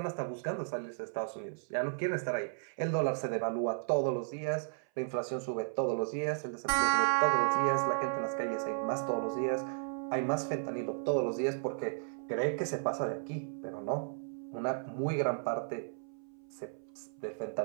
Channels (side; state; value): left; silent; 55 dB below the other